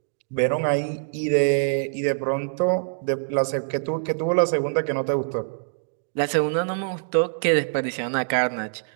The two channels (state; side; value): silent; left; digital silence